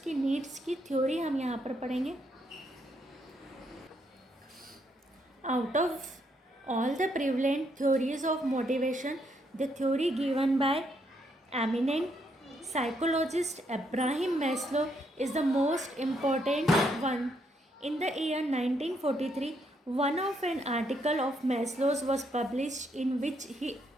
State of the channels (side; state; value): both; normal; correlation 0.75